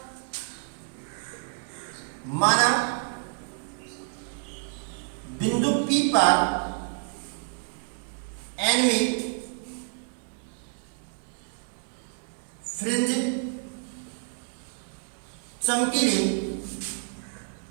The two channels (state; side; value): silent; left; 59 dB below the other